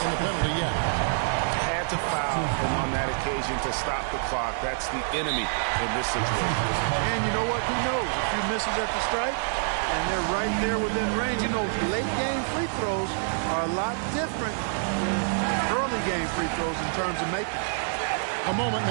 in the penalty yet. Had to foul, and on that occasion to stop the clock. That's the enemy in this situation. And you know what? Who knows? A few misses at the strike, and they're right there within range. You know, late game free throws are a lot different than early game free throws in terms of making. A moment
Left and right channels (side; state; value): left; silent; digital silence